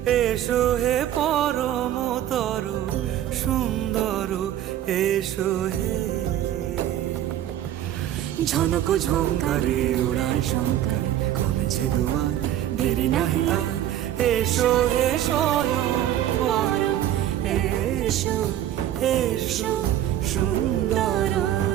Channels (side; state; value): left; quieter; 12.0 dB